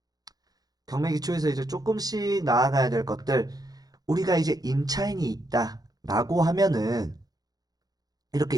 경매 기초에서 이제 조금씩 나아가야 될 것들 우리가 이제 임차인이 있다 라고 하면은 이렇게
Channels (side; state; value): left; late; 0.19 ms